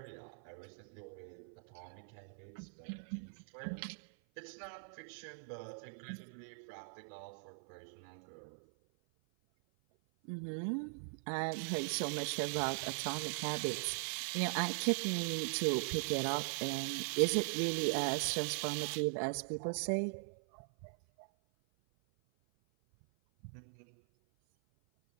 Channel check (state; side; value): silent; left; 51 dB below the other